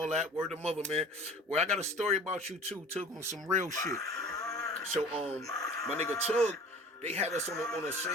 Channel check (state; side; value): normal; both; correlation 0.43